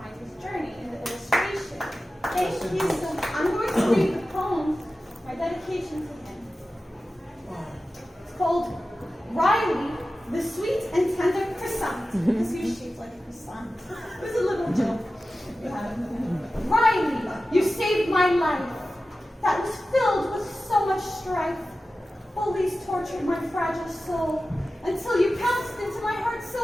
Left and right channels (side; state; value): both; normal; correlation 0.94